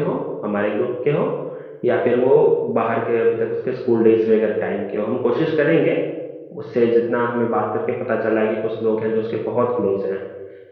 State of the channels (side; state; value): both; identical; correlation 1.00